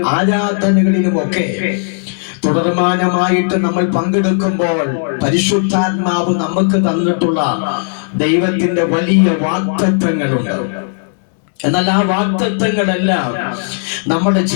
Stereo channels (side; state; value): right; silent; digital silence